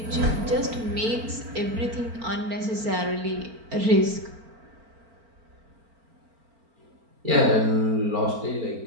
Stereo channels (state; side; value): late; left; 4.4 ms